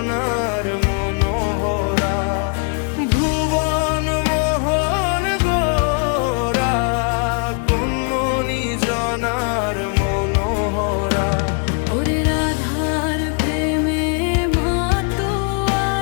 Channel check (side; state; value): right; quieter; 38.9 dB